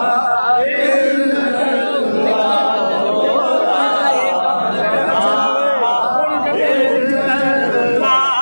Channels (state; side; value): inverted; both; correlation -1.00